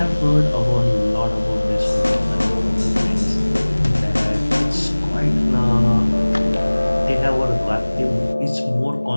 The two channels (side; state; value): both; inverted; correlation -1.00